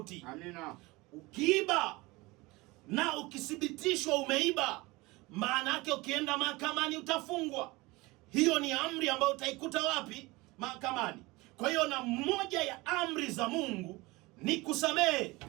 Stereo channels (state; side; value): quieter; left; 22.5 dB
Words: Amina. Ukiiba na ukithibitishwa umeiba, maana yake ukienda mahakamani utafungwa. Hiyo ni amri ambayo utaikuta wapi? Mahakamani. Kwa hiyo na moja ya amri za Mungu ni kusamehe.